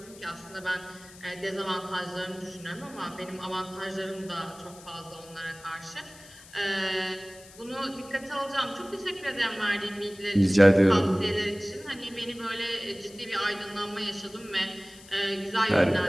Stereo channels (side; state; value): left; noise; hiss, 20 dB below the sound